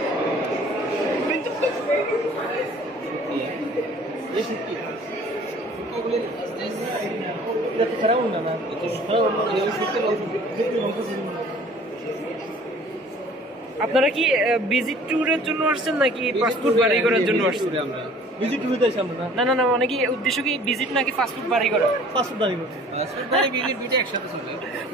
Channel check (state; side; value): normal; both; correlation 0.51